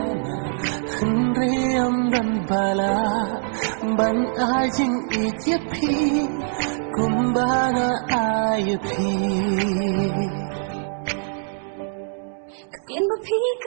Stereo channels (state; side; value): silent; left; 63 dB below the other